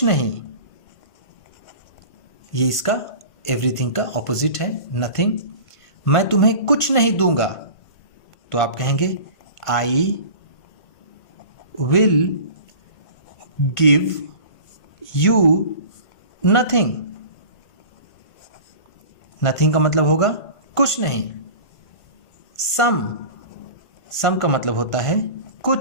नहीं, ये इसका एवरीथिंग का ऑपोजिट है, नथिंग। मैं तुम्हें कुछ नहीं दूंगा, तो आप कहेंगे आई will give you nothing। nothing का मतलब होगा कुछ नहीं। some का मतलब होता है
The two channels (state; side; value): late; right; 1.5 ms